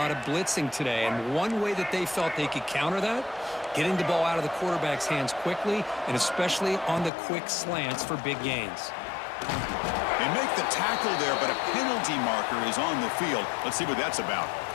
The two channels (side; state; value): right; drops out; at 7.1 s